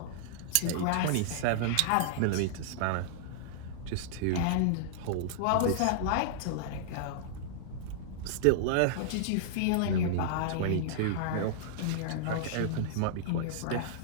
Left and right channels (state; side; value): different; both; correlation -0.01